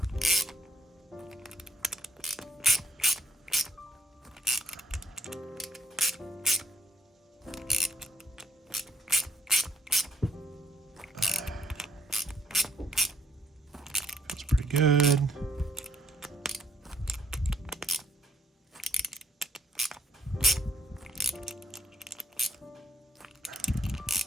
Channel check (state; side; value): normal; both; correlation 0.69